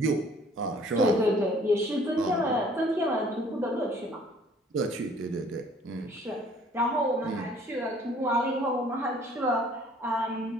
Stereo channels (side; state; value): both; normal; correlation 0.56